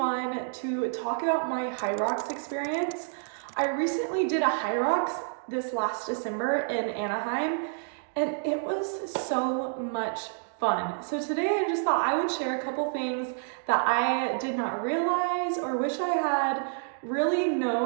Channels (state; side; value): silent; left; digital silence